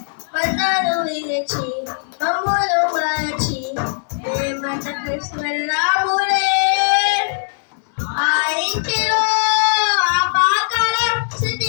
బంధాలు విరచి మమ్ములు మరచి మేమంతకు వెళ్ళాములే ఆ ఇంటిలో ఆపాకల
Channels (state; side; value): silent; right; digital silence